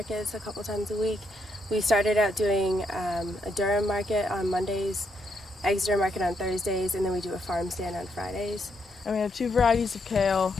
a couple times a week. We started out doing a Durham market on Mondays, Exeter market on Thursdays, and then we do a farm stand on Fridays. And we have 2 varieties of kale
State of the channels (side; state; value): both; normal; correlation 0.77